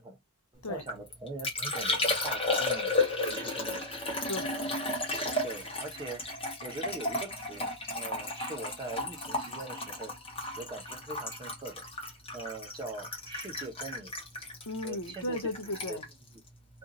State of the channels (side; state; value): both; normal; correlation -0.07